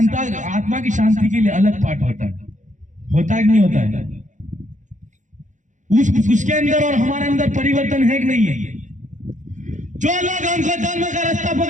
आत्मा की शांति के लिए अलग पाठ होता है। होता है कि नहीं होता है? उसके अंदर और हमारे अंदर परिवर्तन है कि नहीं है? जो लोग हमको धर्म का रास्ता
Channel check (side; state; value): left; late; 0.36 ms